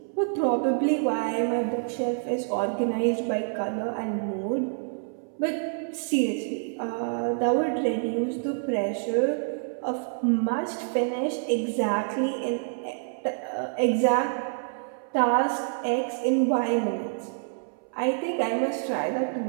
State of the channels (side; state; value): left; silent; 60 dB below the other